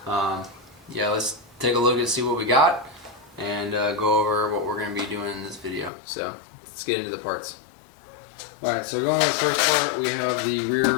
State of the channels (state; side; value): drops out; right; at 5.9 s